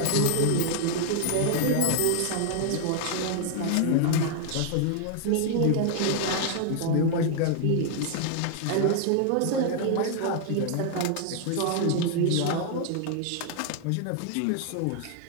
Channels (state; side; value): different; both; correlation 0.00